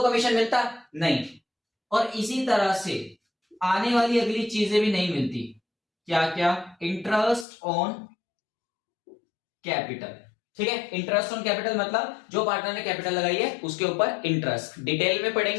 मिलता? नहीं। और इसी तरह से आने वाली अगली चीजें भी नहीं मिलती। क्या क्या? Interest on capital. ठीक है, इंटरेस्ट ऑन कैपिटल मतलब जो पार्टनर ने कैपिटल लगाई है उसके ऊपर इंटरेस्ट, डिटेल में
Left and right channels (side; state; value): right; drops out; at 7.5 s